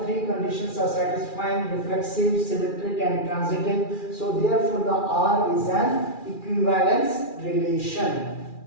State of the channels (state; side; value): late; right; 2.4 ms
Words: three conditions are satisfying: reflexive, symmetric and transitive. So therefore the R is an equivalence relation.